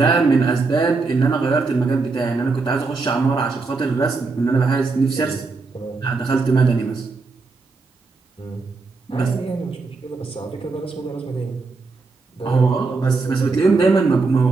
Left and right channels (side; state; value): left; quieter; 4.0 dB